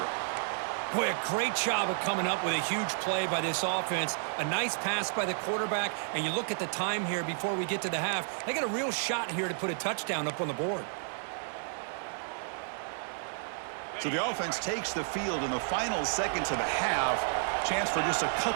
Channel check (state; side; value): silent; left; 57 dB below the other